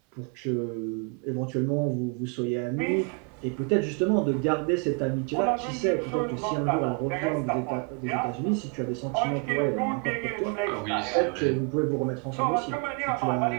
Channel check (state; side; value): quieter; left; 32.4 dB